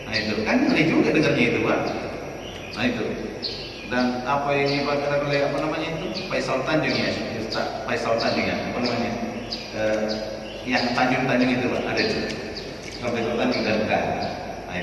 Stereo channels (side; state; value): both; identical; correlation 1.00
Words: Nah itu kan ngeri juga dengarnya itu Pak. Nah itu. Dan apa yang dibakar oleh apa namanya itu Faisal Tanjung ya, Ustaz Faisal Tanjung ya, apa namanya? Yang Tanjung itu Pak, ada itu. Faisal Tanjung dan bukan. Nah